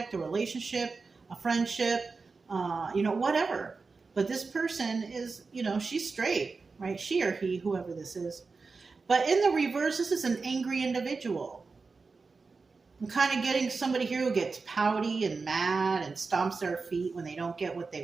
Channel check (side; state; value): left; quieter; 4.3 dB